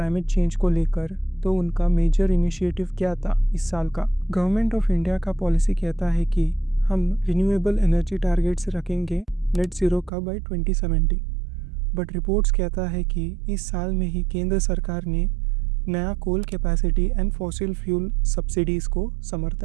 चेंज को लेकर, तो उनका मेजर इनिशिएटिव क्या था इस साल का? गवर्नमेंट ऑफ इंडिया का पॉलिसी कहता है कि हम रिन्यूएबल एनर्जी टारगेट्स रखेंगे नेट ज़ीरो का बाय 2070, बट रिपोर्ट्स कहता है कि इस साल में ही केंद्र सरकार ने नया coal capacity and fossil fuel subsidies को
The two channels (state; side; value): drops out; left; at 10.1 s